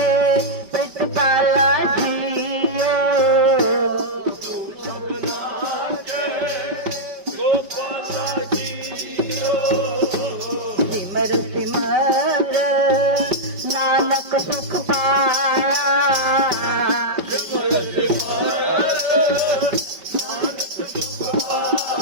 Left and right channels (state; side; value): late; left; 5.2 ms